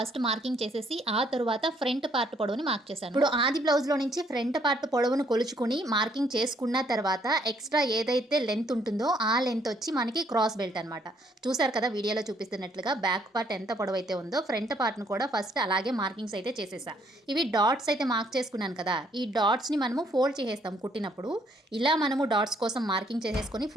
మార్కింగ్ చేసేసి ఆ తరువాత ఫ్రంట్ పార్ట్ పొడవుని మార్క్ చేశాను. ఇప్పుడు ఆది బ్లౌజ్‌లో నుంచి ఫ్రంట్ పార్ట్ పొడవును కొలుచుకుని మార్కింగ్ చేసుకున్న తర్వాత ఎక్స్ట్రా ఏదైతే లెంత్ ఉంటుందో ఆ లెంత్ వచ్చి మనకి క్రాస్ బెల్ట్ అనమాట. చూసారు కదా వీడియోలో చూపిస్తున్నట్లుగా బ్యాక్ పార్ట్ ఎంత పొడవైతే ఉందో ఫ్రంట్ పార్ట్‌ను కూడా ఫస్ట్ అలాగే మార్కింగ్స్ అయితే చేసేసా. ఇవి డాట్స్ అయితే మార్క్ చేసుకున్నాను కదా! ఈ డాట్స్ని మనము ఫోల్డ్ చేసేస్తాం కుట్టినప్పుడు. ఇలా మనము డాట్స్ కోసం మార్కింగ్ చేసేసుకొని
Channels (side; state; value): both; normal; correlation 0.67